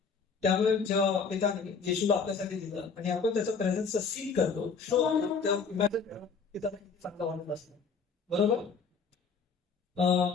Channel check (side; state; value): right; quieter; 5.3 dB